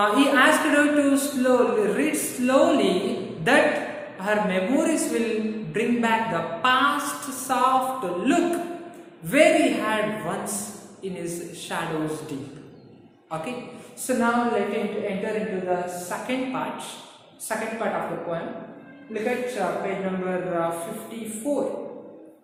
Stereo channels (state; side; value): identical; both; correlation 1.00